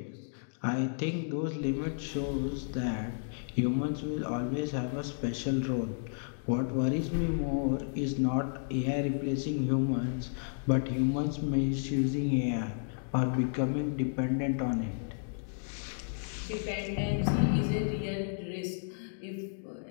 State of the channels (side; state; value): right; silent; digital silence